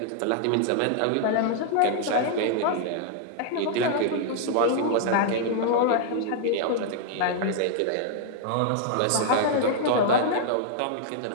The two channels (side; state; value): both; different; correlation -0.01